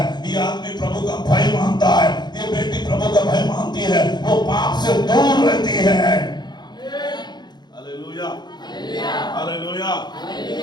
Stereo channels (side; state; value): right; late; 0.21 ms